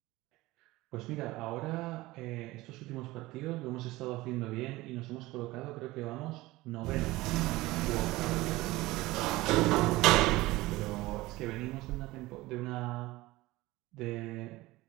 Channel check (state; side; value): quieter; left; 19.3 dB